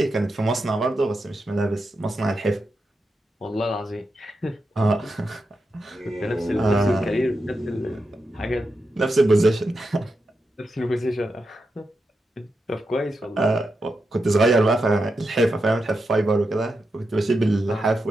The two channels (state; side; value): normal; both; correlation 0.87